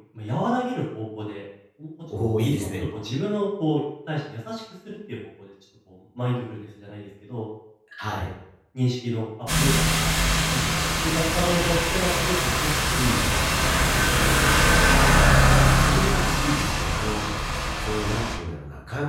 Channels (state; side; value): identical; both; correlation 1.00